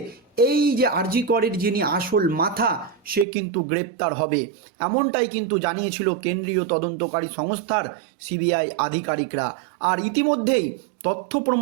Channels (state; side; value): drops out; left; at 3.2 s